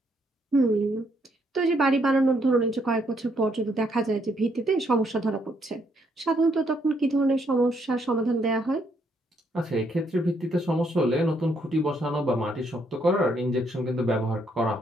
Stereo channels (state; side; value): normal; both; correlation 0.72